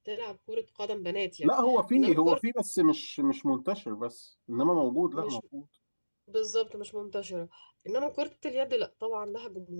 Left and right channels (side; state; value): both; inverted; correlation -1.00